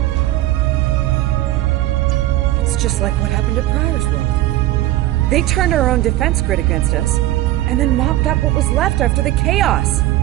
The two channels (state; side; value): quieter; left; 15.5 dB